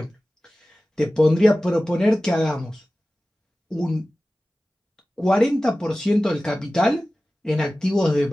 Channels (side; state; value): both; normal; correlation 0.96